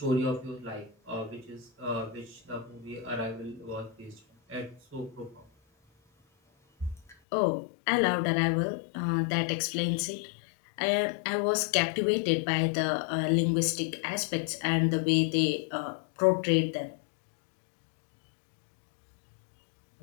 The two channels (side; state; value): right; drops out; at 7.2 s